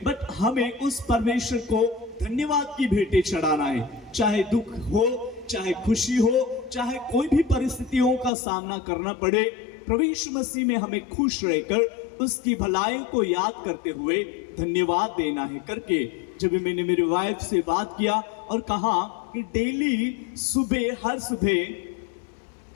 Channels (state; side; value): drops out; right; at 8.3 s